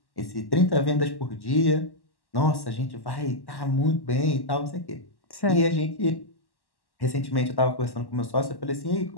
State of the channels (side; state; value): right; late; 1.1 ms